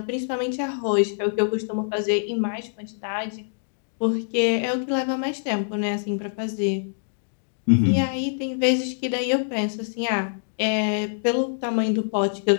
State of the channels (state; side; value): silent; right; digital silence